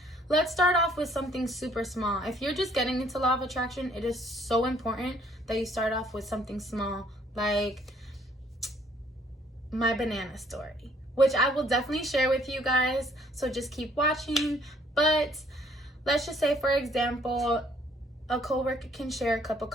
let's start off with something super small. If you're just getting into law of attraction, it is so important that you start off with something small, like my banana story, which I will definitely share with you guys. So just keep watching. But let's just say, for example, a coworker can share a cup of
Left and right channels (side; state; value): both; normal; correlation 0.63